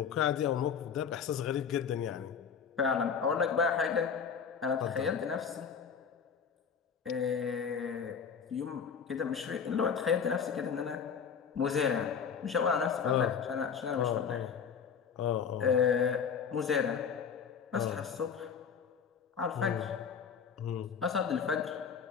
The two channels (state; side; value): quieter; right; 6.8 dB